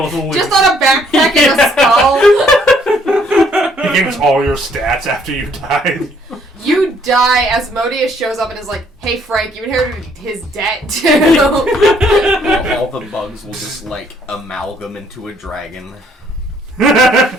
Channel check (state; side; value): normal; both; correlation 0.65